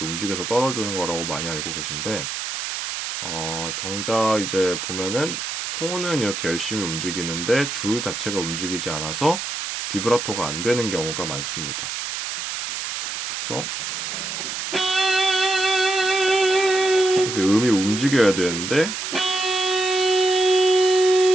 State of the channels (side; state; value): right; noise; hiss, 5 dB below the sound